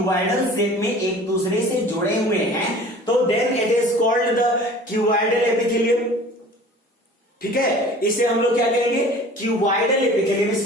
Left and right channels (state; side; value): normal; both; correlation 0.45